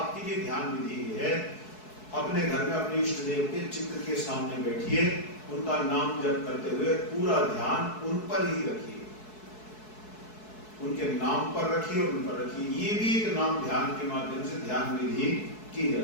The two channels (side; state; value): right; late; 4.6 ms